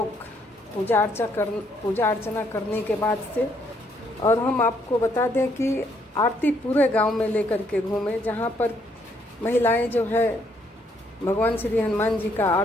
पूजा अर्चना करने के बाद से। और हम आपको बता दें कि आरती पूरे गांव में लेकर के घूमे, जहां पर महिलाएं जो है भगवान श्री हनुमान जी का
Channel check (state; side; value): normal; both; correlation 0.70